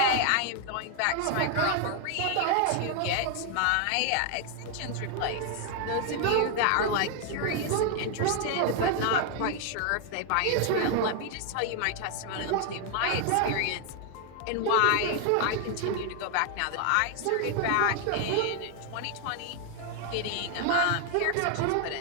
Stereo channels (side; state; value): both; different; correlation 0.00